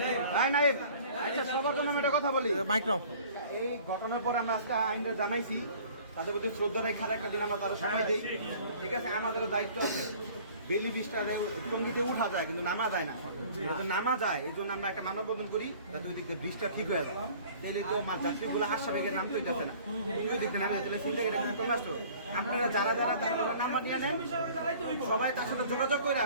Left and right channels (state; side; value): inverted; both; correlation -0.49